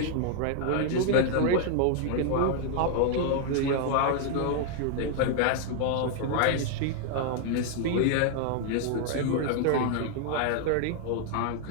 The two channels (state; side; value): different; both; correlation 0.00